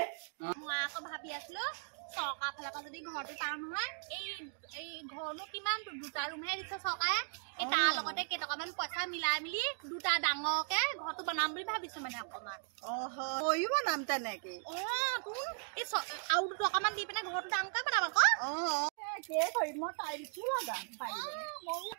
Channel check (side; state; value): left; silent; 53 dB below the other